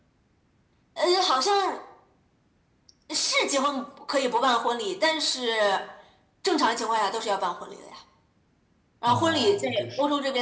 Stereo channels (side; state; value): both; identical; correlation 1.00